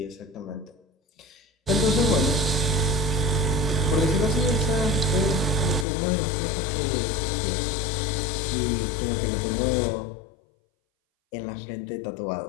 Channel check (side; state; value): right; drops out; at 5.9 s